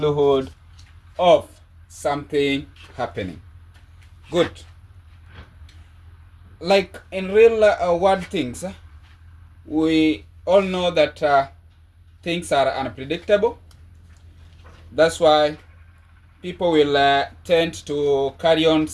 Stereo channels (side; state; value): both; identical; correlation 1.00